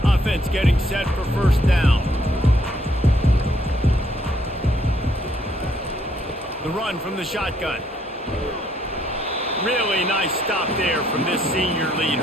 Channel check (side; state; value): both; normal; correlation 0.69